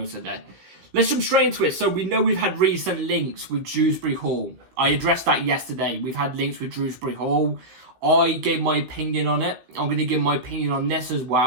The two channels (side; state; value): left; late; 16 ms